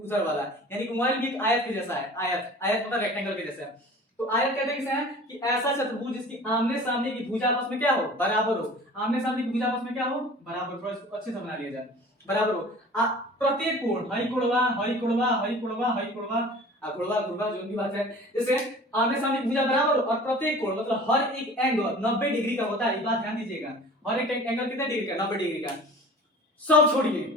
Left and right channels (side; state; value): both; normal; correlation 0.43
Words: वाला, यानी कि मोबाइल भी एक आयत के जैसा है। आयत, आयत मतलब रेक्टेंगल के जैसा है। तो आयत कहते हैं किसे हैं, कि ऐसा चतुर्भुज जिसकी आमने सामने की भुजा आपस में क्या हो, बराबर हो। आमने सामने की भुजा आपस में क्या हो, बराबर। थोड़ा इसको अच्छे से बना लिया जाए, बराबर हो। प्रत्येक कोण, हई कोणवा, हई कोणवा, हई कोणवा, हई कोणवा, गुणवा, गुणवा, जो भी बात है, जैसे आमने सामने की भुजा बराबर हो, और प्रत्येक कोण मतलब हर एक एंगल 90 डिग्री का होता है। ये बात ध्यान दीजिएगा, हर एक एंगल कितने डिग्री का, 90 डिग्री का। सब छोड़िए,